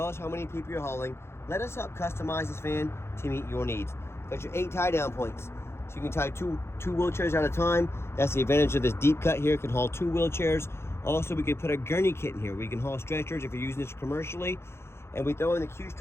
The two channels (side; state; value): right; late; 0.12 ms